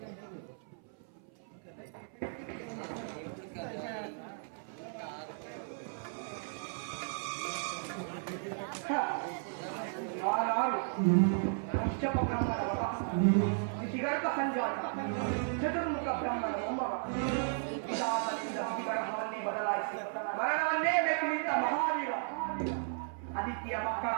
ಕಶ್ಯಪ ಬ್ರಹ್ಮನ ವರ, ಋಷಿಗರ್ಭ ಸಂಜಾತ, ಚತುರ್ಮುಖ ಬ್ರಹ್ಮನ ಮೊಮ್ಮಗ. ಪಿತಾತನಿಂದ ವಿಗ್ರಹವನ್ನೇ ಬದಲಾಯಿಸಿ ಮರಣವನ್ನೇ ಬೆಕ್ಕಿನಿಂದ ಮಹಾವೀರ. ಆದಿತ್ಯ ಮಕ್ಕಳ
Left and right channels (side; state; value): left; silent; 55 dB below the other